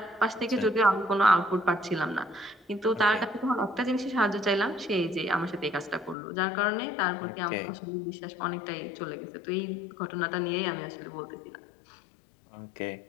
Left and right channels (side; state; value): right; drops out; at 6.2 s